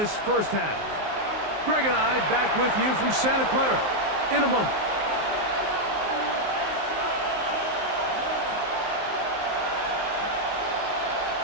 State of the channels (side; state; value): left; late; 19 ms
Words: first half. Greg and I back with you from Santa Clara in a moment.